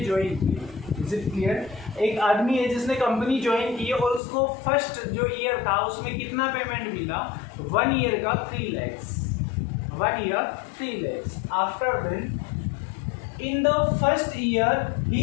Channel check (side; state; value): right; drops out; at 4.2 s